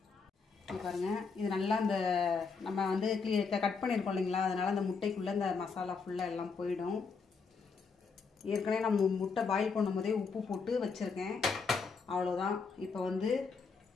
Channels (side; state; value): right; quieter; 5.0 dB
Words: பாருங்கள், இது நல்லா இந்த நம்ம வந்து கட் பண்ணியிருக்கோம் இல்லைங்களா, அதனால் அந்த முட்டைக்குள்ளே இந்த மசாலா ஃபுல்லாக எல்லாம் போயிடும். ஏற்கனவே நம்ம முட்டை பாயில் பண்ணும்போதே உப்பு போட்டு வச்சுருக்கேன். அவ்வளோதான். இப்போ வந்து